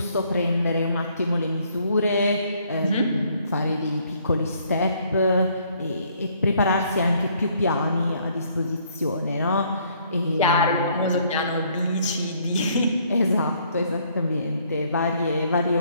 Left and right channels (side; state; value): both; inverted; correlation -0.65